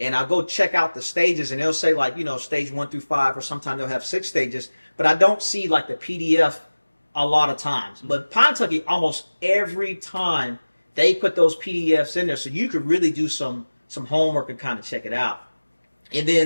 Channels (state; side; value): inverted; both; correlation -1.00